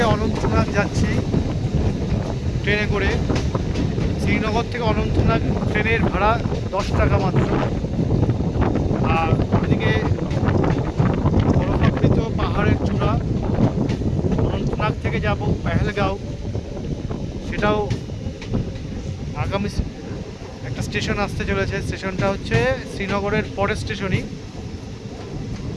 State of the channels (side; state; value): both; identical; correlation 1.00